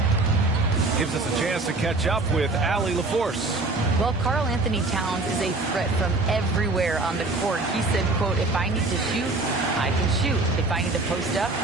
Gives us a chance to catch up with Allie LaForce. Well, Karl Anthony Towns is a threat from everywhere on the court. He said, quote, if I need to shoot, I can shoot. If I need to post up,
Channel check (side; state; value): left; quieter; 3.2 dB